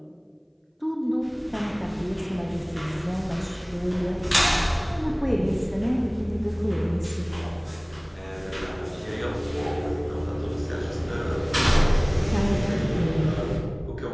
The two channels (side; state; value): both; identical; correlation 1.00